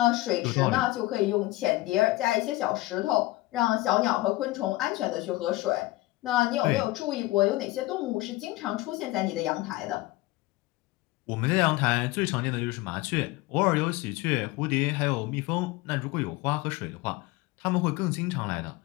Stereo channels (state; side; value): quieter; right; 19.2 dB